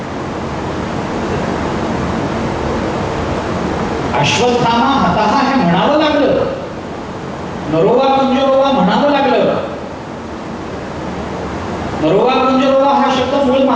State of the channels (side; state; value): both; identical; correlation 1.00